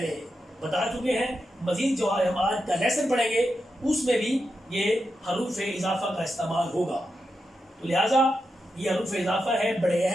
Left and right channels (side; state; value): both; normal; correlation 0.87